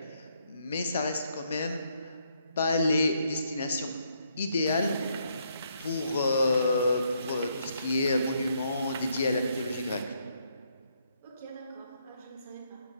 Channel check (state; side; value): inverted; both; correlation -0.74